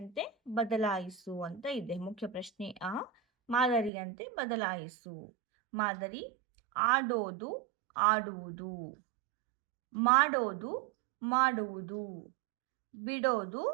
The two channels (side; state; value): left; drops out; at 3.9 s